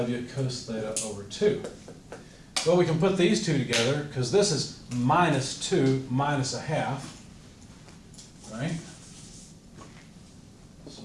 cos theta over 2. Well, we can put these two together because this is minus 2 minus a half, right?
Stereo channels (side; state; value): both; identical; correlation 1.00